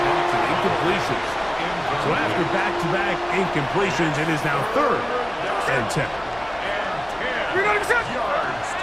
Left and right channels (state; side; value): noise; left; rumble, 23 dB below the sound